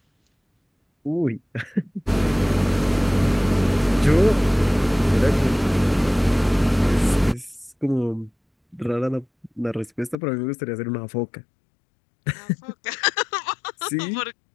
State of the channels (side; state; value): right; drops out; at 10.2 s